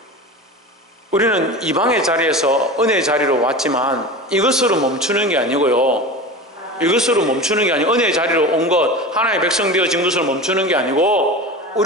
우리는 이방의 자리에서 은혜의 자리로 왔지만 이것으로 멈추는 게 아니고요. 이것으로 멈추는 게 아니고 은혜의 자리로 온 것, 하나님의 백성 되어진 것으로 멈추는 게 아니고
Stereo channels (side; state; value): both; normal; correlation 0.30